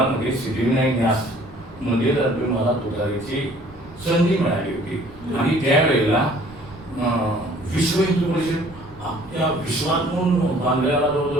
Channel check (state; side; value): noise; right; rumble, 24 dB below the sound